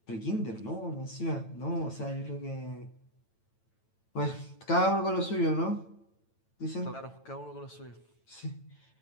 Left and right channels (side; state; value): right; late; 9.0 ms